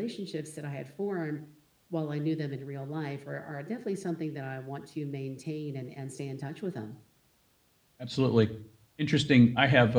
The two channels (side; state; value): both; identical; correlation 1.00